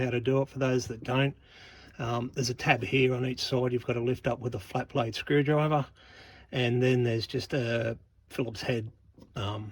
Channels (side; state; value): both; identical; correlation 1.00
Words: to do it. For those that don't, there's a tab here on each side you've got to lift up with a flat blade screwdriver, and then there's just a Phillips head